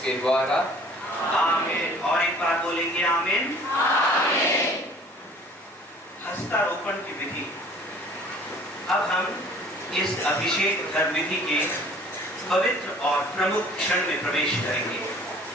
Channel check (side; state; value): both; normal; correlation 0.51